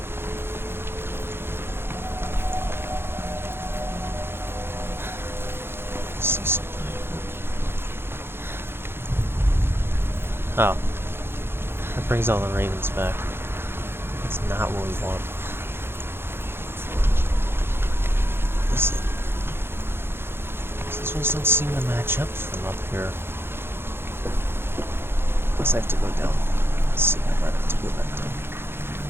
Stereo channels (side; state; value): left; late; 0.11 ms